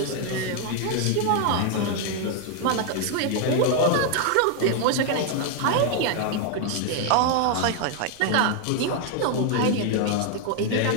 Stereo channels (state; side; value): different; both; correlation 0.00